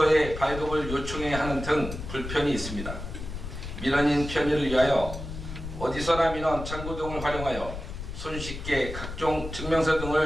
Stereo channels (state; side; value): noise; left; rumble, 8 dB below the sound